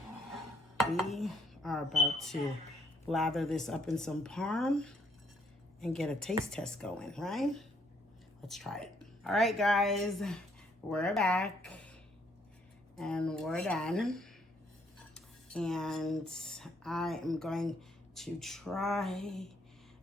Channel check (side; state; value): both; normal; correlation 0.69